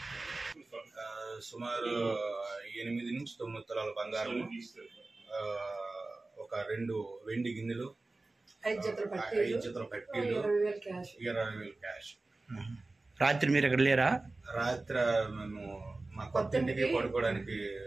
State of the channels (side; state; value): left; quieter; 3.2 dB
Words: సుమారు 8 నుంచి 9 తులాల బంగారం, ఒక 2 వెండి గిన్నెలు, 5 జతల పట్టీలు, 20,000 క్యాష్. రాత్రి మీరు ఎక్కడ లేరా? రాత్రి మేము మా కొత్త ఇంటికి పడుకోవడానికి